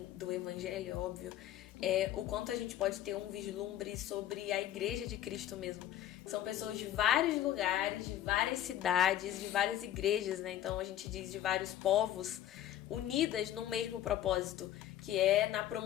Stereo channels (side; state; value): right; quieter; 12.4 dB